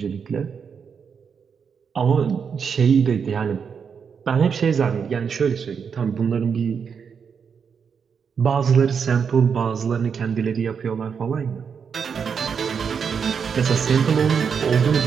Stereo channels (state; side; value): quieter; left; 6.5 dB